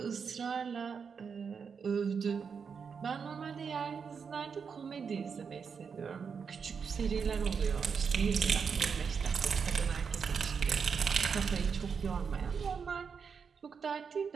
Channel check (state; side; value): quieter; left; 6.1 dB